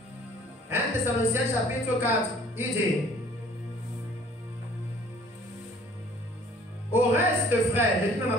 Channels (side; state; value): both; normal; correlation 0.54